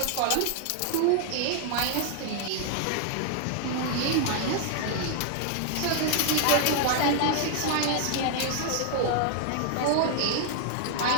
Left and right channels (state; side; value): different; both; correlation 0.00